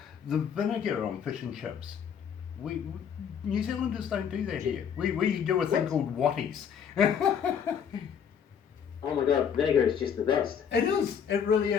vinegar on fish and chips. We New Zealanders don't do that here. We do a thing called watties. Oh my God, vinegar is just the best. It is. It really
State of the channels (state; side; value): quieter; right; 7.7 dB